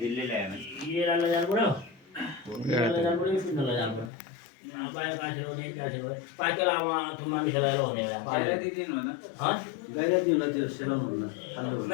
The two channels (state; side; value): drops out; right; at 4.1 s